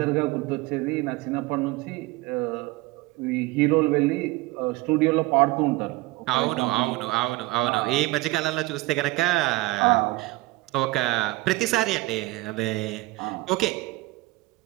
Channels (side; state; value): left; quieter; 20.5 dB